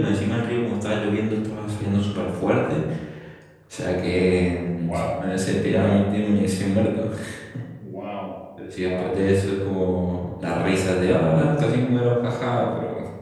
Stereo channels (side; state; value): both; identical; correlation 1.00